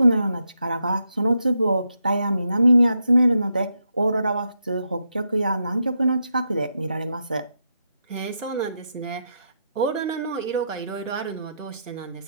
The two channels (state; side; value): inverted; both; correlation -0.82